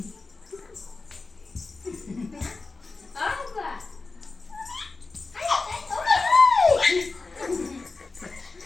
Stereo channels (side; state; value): right; quieter; 3.8 dB